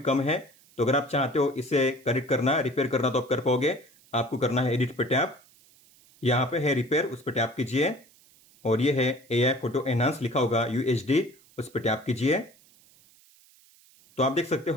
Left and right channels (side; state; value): right; noise; hiss, 28 dB below the sound